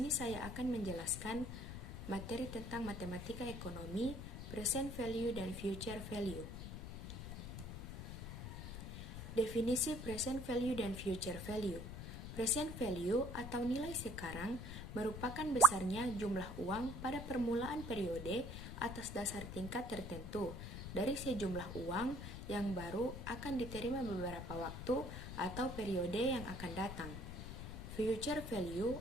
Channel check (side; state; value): left; noise; rumble, 7 dB below the sound